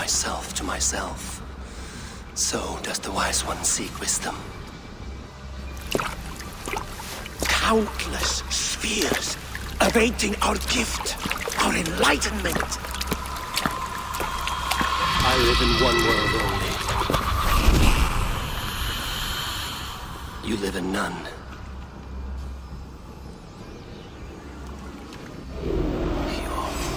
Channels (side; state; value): both; identical; correlation 1.00